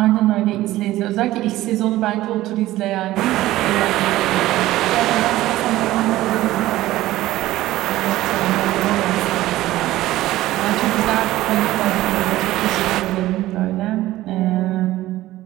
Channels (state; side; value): quieter; left; 16.0 dB